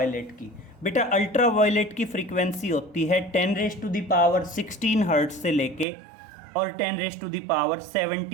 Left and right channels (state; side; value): drops out; left; at 5.9 s